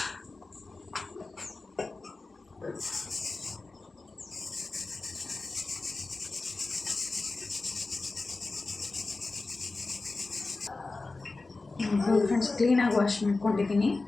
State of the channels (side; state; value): right; quieter; 3.5 dB